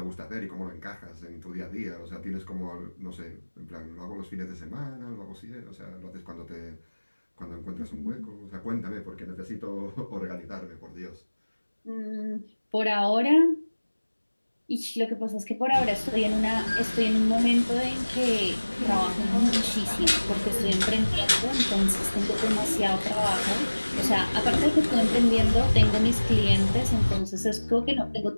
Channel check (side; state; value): both; inverted; correlation -1.00